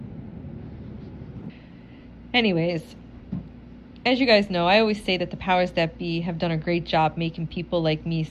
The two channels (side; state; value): both; identical; correlation 1.00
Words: Anyways, as you guys know, I always say that the powers that be have done a great job making people like me